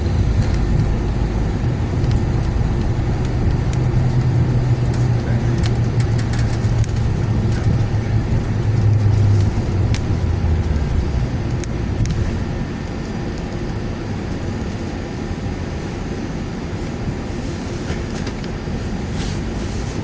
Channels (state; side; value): identical; both; correlation 1.00